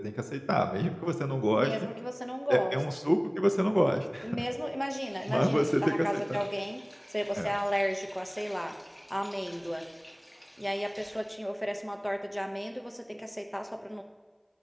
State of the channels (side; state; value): both; identical; correlation 1.00